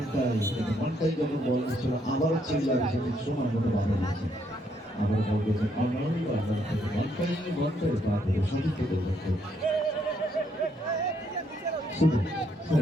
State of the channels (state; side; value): normal; both; correlation 0.73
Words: আবারও চিল্লার সময় মতো বাধা দিয়েছে। আবার বল করেছে সঠিক